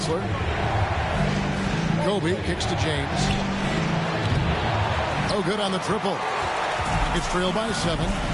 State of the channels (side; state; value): both; identical; correlation 1.00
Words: Kobe kicks to James. Oh, good on the triple. It's trailed by 7.